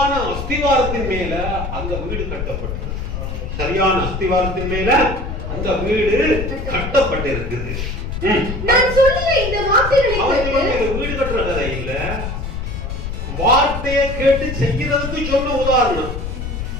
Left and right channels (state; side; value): noise; left; rumble, 5 dB below the sound